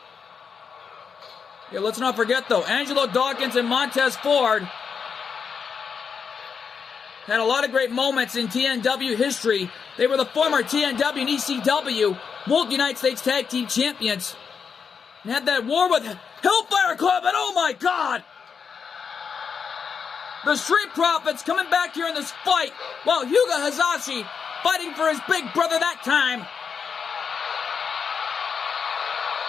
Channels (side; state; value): right; quieter; 6.2 dB